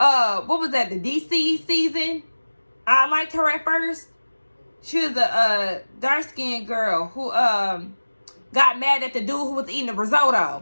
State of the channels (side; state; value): both; inverted; correlation -1.00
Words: was that? The DC season. I liked her at first. She was a dark-skinned girl who got mad at the dude who was eating the